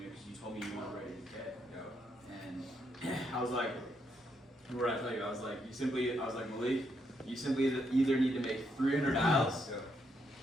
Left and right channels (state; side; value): normal; both; correlation 0.77